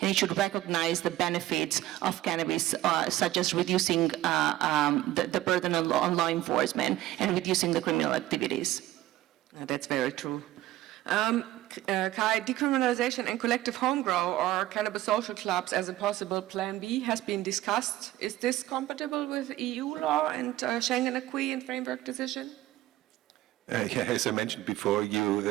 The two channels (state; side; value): quieter; left; 15.5 dB